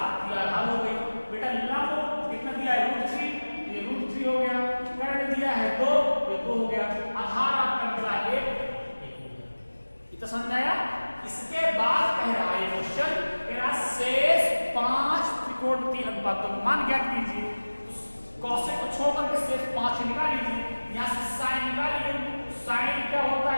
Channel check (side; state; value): both; inverted; correlation -1.00